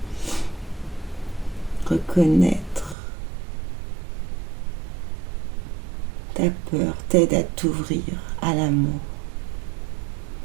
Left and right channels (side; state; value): left; drops out; at 3.0 s